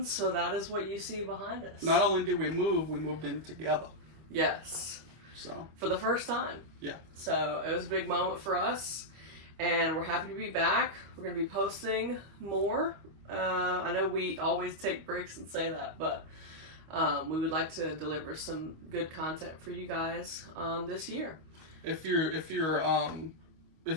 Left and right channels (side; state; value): left; late; 25 ms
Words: so that is what you see behind us. Not only did we moved in together. Yes. So. For the first time. Yeah. So it was a big moment for us, and we're happy to be back. We're going to be posting more. I know we always take breaks and say that, but we would like to deliver some good content for you guys this year.